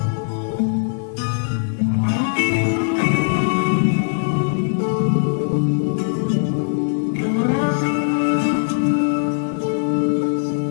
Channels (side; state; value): right; silent; digital silence